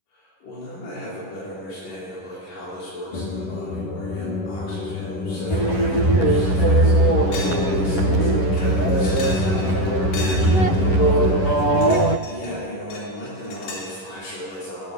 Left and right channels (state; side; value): late; right; 11 ms